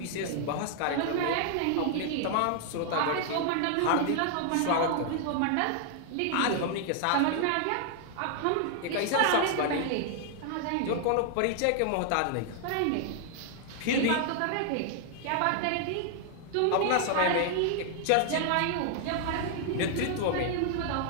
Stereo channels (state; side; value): different; both; correlation 0.00